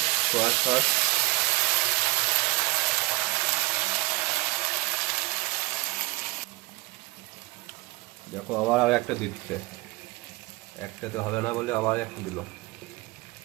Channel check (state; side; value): quieter; left; 23.3 dB